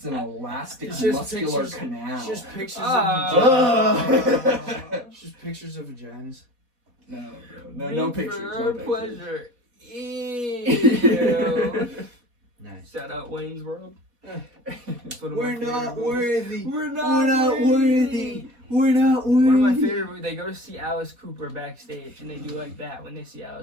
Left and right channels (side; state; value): left; late; 4.1 ms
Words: an elastic It's just muscular pictures- canal. It's just pictures Oh. of vaginas. It's just pictures of vaginas. No, bro. No pictures. For No pictures. pleasure. Ew. Nice. Shout out Wayne's World. That's one of We're my favorite not movies. worthy. We're not worthy. We're not worthy. One of my favorite movies, they go to see Alice Cooper backstage, and they do like that when they see